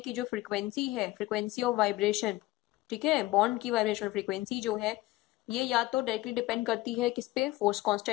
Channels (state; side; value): quieter; right; 18.4 dB